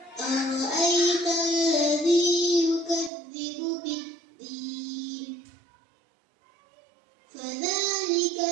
أرأيت الذي يكذب بالدين فذلك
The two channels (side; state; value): left; drops out; at 3.1 s